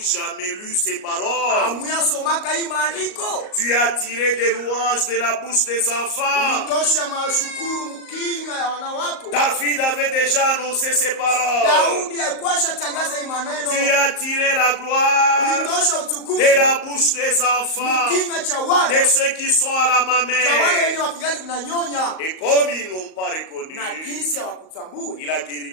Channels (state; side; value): late; right; 38 ms